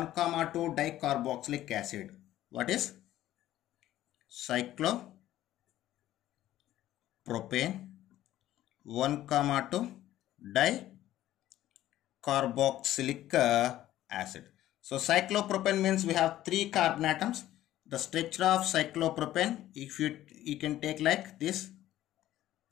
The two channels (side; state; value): right; quieter; 13.8 dB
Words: dicarboxylic acid. What is cyclopropane 1,2 dicarboxylic acid. So cyclopropane means we have 3 carbon atoms. The structure of cyclopropane, if you can take like this.